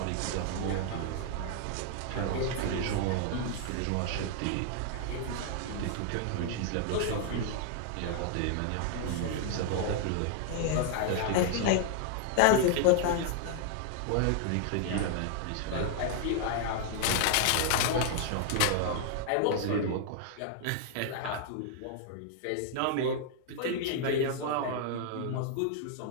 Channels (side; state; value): both; different; correlation 0.00